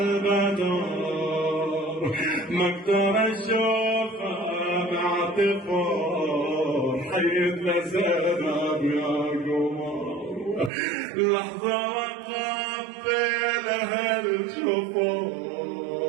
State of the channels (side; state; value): left; drops out; at 10.7 s